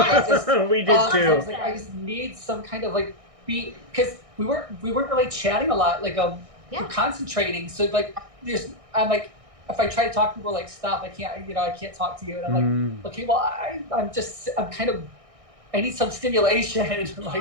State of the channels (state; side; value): late; left; 1.6 ms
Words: just, We did I too. was I just need some kind of beat, because we weren't really chatting a lot. We're concentrating. So I'm if I try to talk to people, stop. I can't talk to you. And I'm okay, well, I'm kind of, I need some stimulation. I'd be